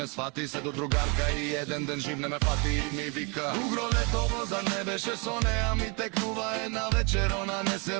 свати. Се до другарка и еден ден жив не ме фати и ми вика: угро летово, зар не беше со неа? Ми текнува една вечер, она не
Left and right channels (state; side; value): quieter; left; 32.3 dB